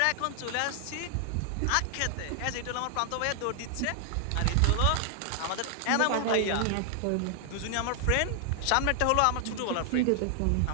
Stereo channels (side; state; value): both; different; correlation 0.00